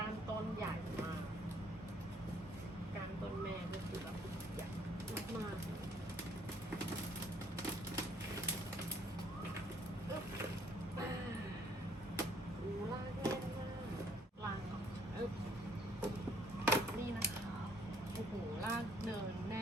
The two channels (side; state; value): both; normal; correlation 0.63